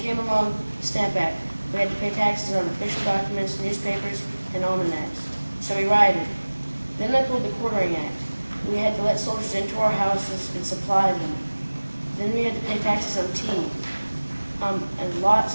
along the Stamp Act. We had to pay taxes on official documents, newspapers, and almanacs. So we rioted. Then they pulled the Quartering Act. We had to let soldiers into our houses and supply them. Then we had to pay taxes on tea, and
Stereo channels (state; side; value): inverted; both; correlation -1.00